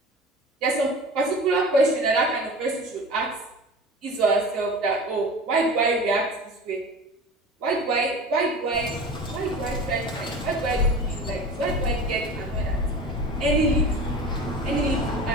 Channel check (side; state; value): both; normal; correlation 0.35